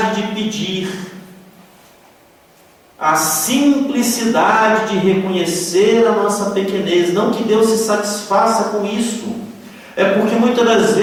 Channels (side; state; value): both; identical; correlation 1.00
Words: de pedir, a simplicidade de reconhecer a nossa pequenez. Não que Deus se satisfaça com isso, é porque muitas das